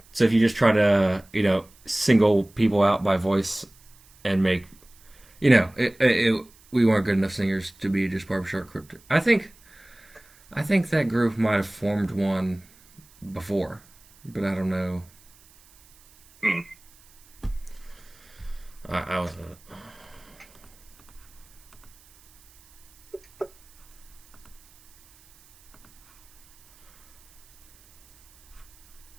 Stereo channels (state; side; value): noise; right; hiss, 27 dB below the sound